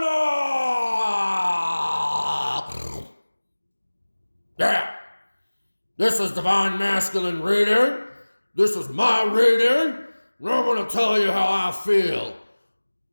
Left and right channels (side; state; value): both; inverted; correlation -1.00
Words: Yeah, this is Divine Masculine Reading. This is my reading. And I'm going to tell you how I feel